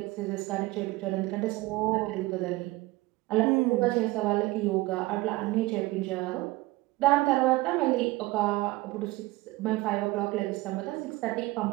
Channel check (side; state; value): left; quieter; 19.9 dB